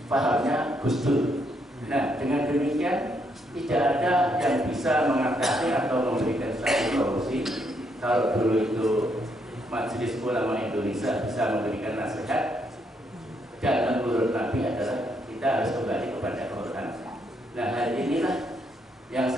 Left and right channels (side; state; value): both; normal; correlation 0.75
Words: pahamnya Gus Dur. Nah, dengan demikian tidak ada yang bisa mengatasi atau memberikan satu solusi. Kalau dulu itu Majelis Ulama Indonesia bisa memberikan nasihat, dan menurut Nabi adalah kita harus kembali kepada Quran. Nah, hal inilah yang